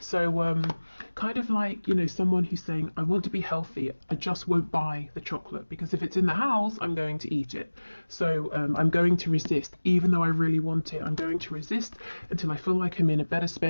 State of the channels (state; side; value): inverted; both; correlation -1.00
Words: kind of like, someone who's saying, I want to be healthy, I just won't buy the chocolate, because if it's in the house, I'm going to eat it. So I'm going to resist, even though I really want it. I'm going to resist until I feel like I'm in a better